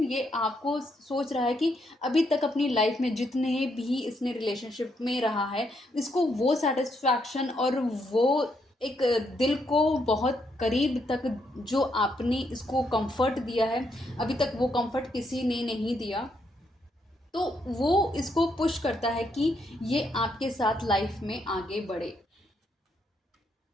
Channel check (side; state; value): both; normal; correlation 0.76